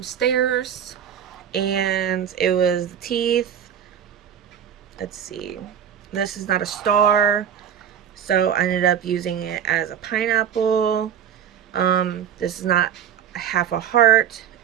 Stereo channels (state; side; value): quieter; left; 8.9 dB